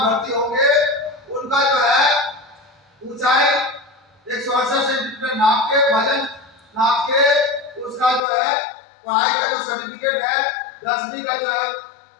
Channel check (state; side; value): drops out; right; at 8.2 s